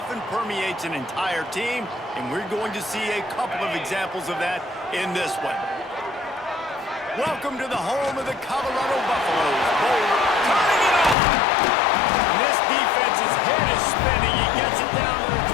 permeates an entire team, and we're going to see a couple of examples of that in this one. Welcome to the home of the Colorado Buffaloes. Boulder turning it on. And this defense's head is spinning. He gets it down to the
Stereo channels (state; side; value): drops out; right; at 11.2 s